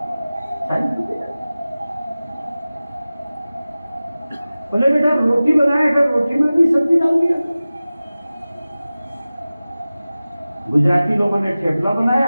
सारी सब्जी डाल। बोले बेटा रोटी बनाया था, रोटी में भी सब्जी डाल दिया। गुजराती लोगों ने ठेपला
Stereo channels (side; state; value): both; inverted; correlation -0.97